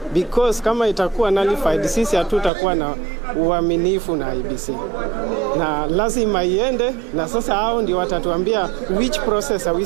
because kama itakuwa nullified, sisi hatutakuwa na uaminifu na IEBC, na lazima iende, na sasa hao ndio watatuambia which process are we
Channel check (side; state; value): left; drops out; at 2.5 s